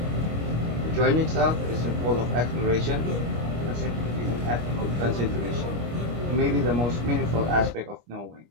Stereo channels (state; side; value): late; left; 25 ms